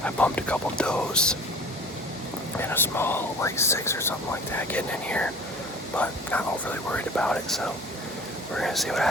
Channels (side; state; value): both; normal; correlation 0.44